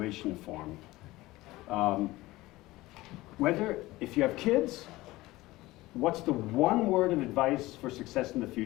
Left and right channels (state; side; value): quieter; right; 18.8 dB